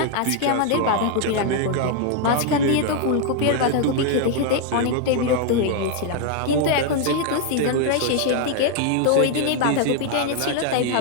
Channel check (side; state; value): both; different; correlation 0.00